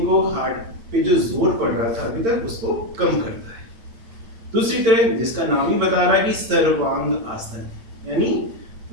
को, हार्ट पे जो जोर पड़ रहा था अभी तक, उसको कम करता है। दूसरी तरह, जिसका नाम ही बता रहा है कि सर्वांग आसन, यानी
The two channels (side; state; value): left; late; 8.9 ms